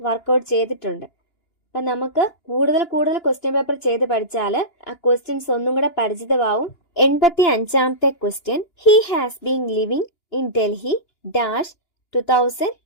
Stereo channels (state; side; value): late; right; 2.9 ms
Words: ചെയ്തിട്ടുണ്ട്. അപ്പൊ നമുക്ക് കൂടുതൽ ക്വസ്റ്റ്യൻ പേപ്പർ ചെയ്ത് പഠിച്ചാൽ ആ ക്വസ്റ്റ്യൻസ് ഒന്നും കൂടെ പരിചിതമാവും. 85ാമത്തെ question, he has been living in Delhi dash